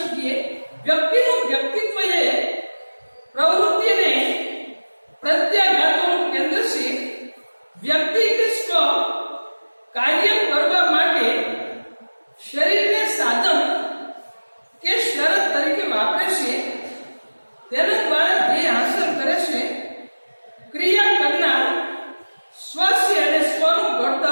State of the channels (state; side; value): inverted; both; correlation -1.00